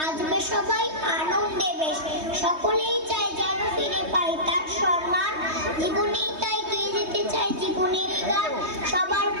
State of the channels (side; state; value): left; late; 3.2 ms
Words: সবাই আনন্দে বেশ সকলেই চায় যেন ফিরে পাই তার সম্মান জীবনেই তাই গেয়ে যেতে চাই জীবনেরই গান সবার